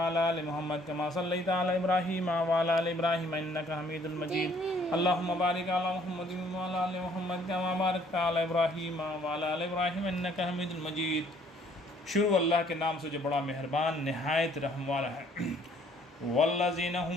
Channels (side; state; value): both; normal; correlation 0.61